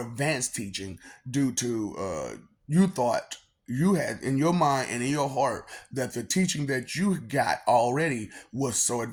advanced teaching due to you thought you had in your mind and in your heart that the teaching that you got already was so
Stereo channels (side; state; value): both; identical; correlation 1.00